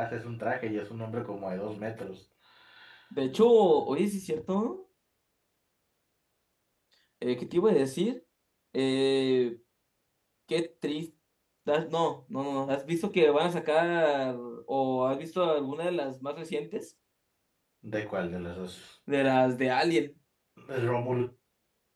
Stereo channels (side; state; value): both; identical; correlation 1.00